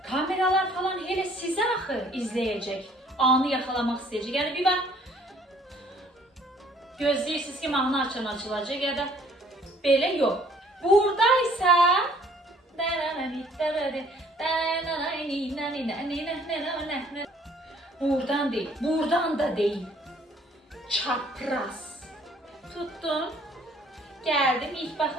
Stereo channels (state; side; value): normal; both; correlation 0.59